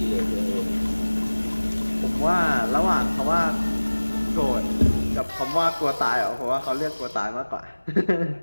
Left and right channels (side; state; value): both; inverted; correlation -1.00